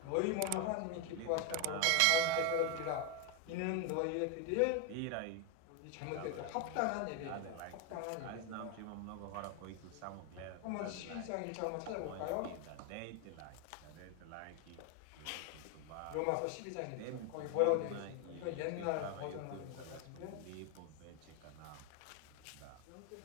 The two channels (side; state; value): both; different; correlation 0.01